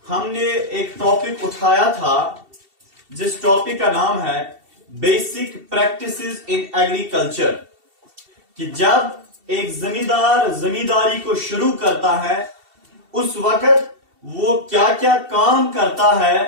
हमने एक टॉपिक उठाया था जिस टॉपिक का नाम है बेसिक प्रैक्टिसेस इन एग्रीकल्चर, कि जब एक जमींदार जमींदारी को शुरू करता है उस वक्त वो क्या क्या काम करता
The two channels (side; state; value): left; late; 2.7 ms